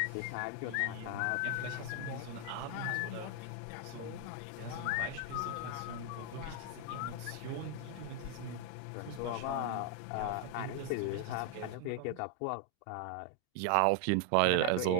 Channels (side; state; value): both; different; correlation 0.00